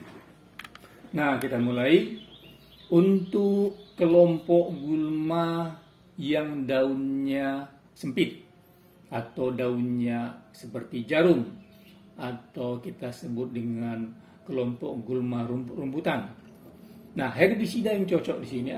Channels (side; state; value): both; identical; correlation 1.00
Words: Nah, kita mulai untuk kelompok gulma yang daunnya sempit atau daunnya seperti jarum atau kita sebut dengan kelompok gulma rumputan. Nah, herbisida yang cocok di sini